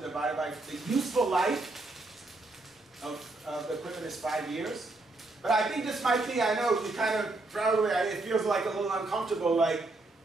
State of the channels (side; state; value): left; quieter; 3.0 dB